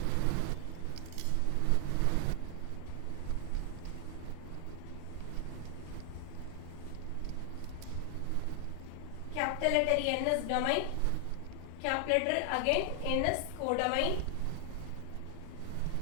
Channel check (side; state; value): both; different; correlation 0.00